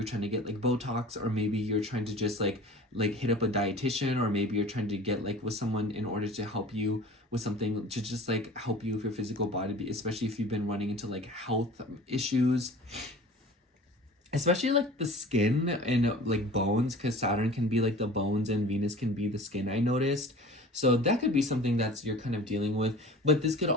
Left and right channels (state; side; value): normal; both; correlation 0.41